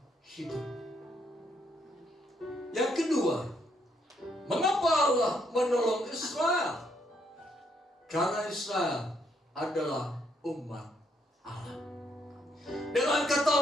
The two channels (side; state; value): both; normal; correlation 0.74